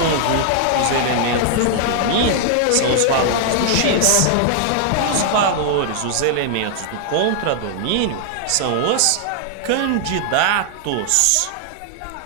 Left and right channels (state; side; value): different; both; correlation 0.00